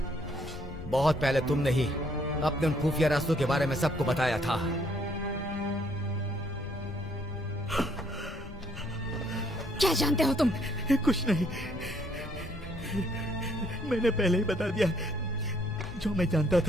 बहुत पहले तुमने ही अपने उन खुफिया रास्तों के बारे में सबको बताया था। क्या जानते हो तुम? कुछ नहीं, मैंने पहले ही बता दिया जो मैं जानता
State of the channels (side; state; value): left; noise; rumble, 15 dB below the sound